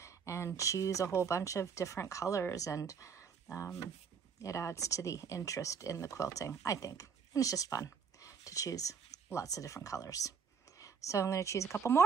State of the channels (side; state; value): left; quieter; 6.3 dB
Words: and choose a whole bunch of different colors, and it adds to the interest in the quilting, I think. And it's just fun to choose lots of different colors. So I'm going to choose a couple